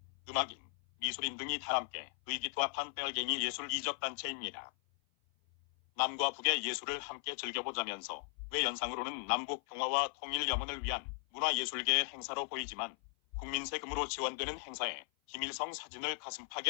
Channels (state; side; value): silent; right; 53 dB below the other